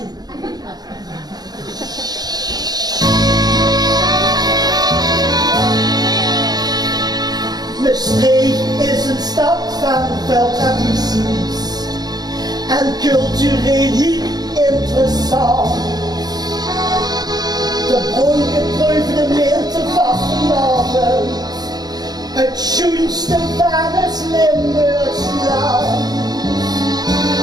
Maastricht is een stad van veel tradities en cultureel heel interessant. De brongeproefde meerte vastenavond, het schoonste van het Limburgs land.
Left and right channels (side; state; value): left; late; 0.19 ms